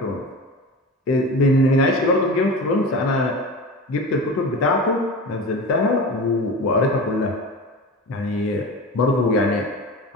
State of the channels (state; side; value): normal; both; correlation 0.31